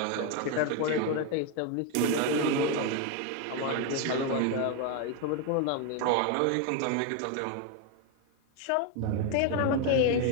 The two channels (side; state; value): both; different; correlation 0.01